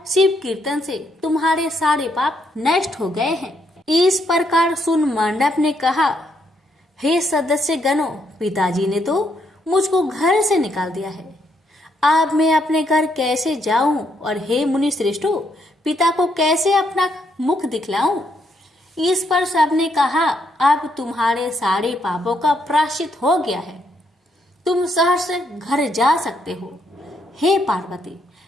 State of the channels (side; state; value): both; normal; correlation 0.75